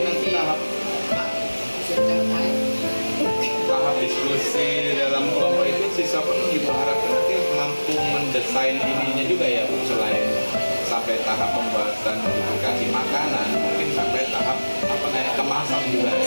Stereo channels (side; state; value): both; inverted; correlation -1.00